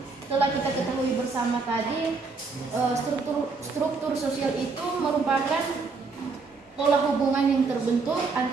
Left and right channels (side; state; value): left; quieter; 4.3 dB